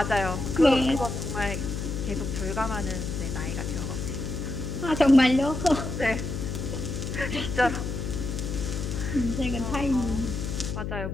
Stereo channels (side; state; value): left; noise; hum, 4 dB below the sound